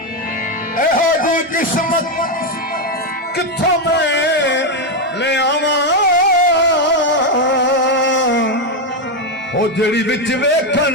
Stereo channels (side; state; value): both; normal; correlation 0.06